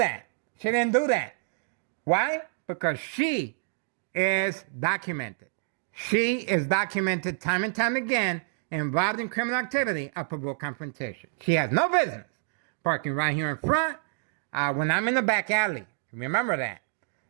Why? Because she is documented. She is documented time and time again involved in criminal activity of provoked confrontation. She has no business parking right here in front when I'm in the back alley. Remember that.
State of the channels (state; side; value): silent; left; digital silence